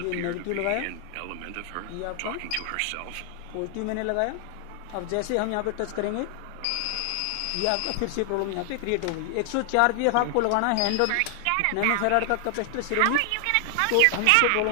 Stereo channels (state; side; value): different; both; correlation 0.00